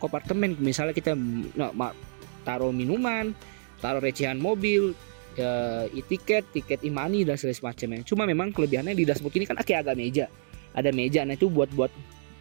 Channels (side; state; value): left; silent; 59 dB below the other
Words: Misalnya kita taruh minuman, taruh recehan mobil, tiket e-money dan segala semacamnya. Cuma memang kelebihannya di dashboard ini kan kayak agak meja. Ada meja, nah itu buat